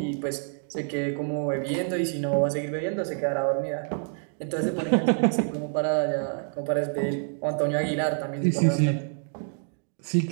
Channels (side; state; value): left; silent; 60 dB below the other